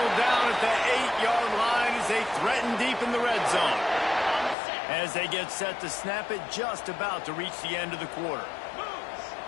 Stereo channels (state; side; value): drops out; right; at 4.5 s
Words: down at the 8-yard line as they threaten deep in the red zone. As they get set to snap it, just about to reach the end of the quarter.